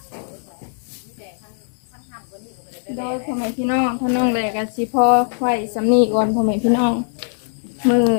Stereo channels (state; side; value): silent; right; digital silence